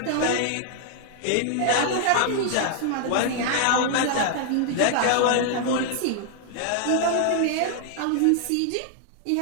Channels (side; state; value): both; different; correlation 0.00